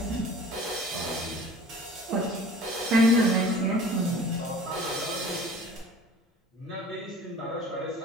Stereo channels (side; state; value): both; normal; correlation 0.46